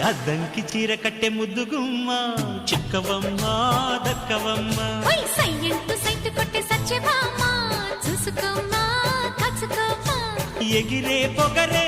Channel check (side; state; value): both; identical; correlation 1.00